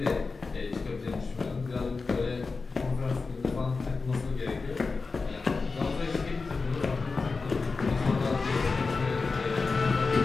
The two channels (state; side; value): quieter; right; 4.2 dB